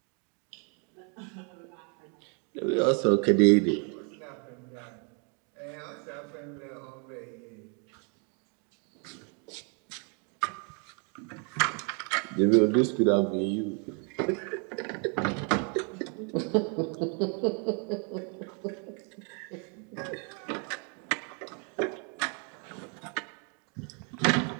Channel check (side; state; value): left; quieter; 37.8 dB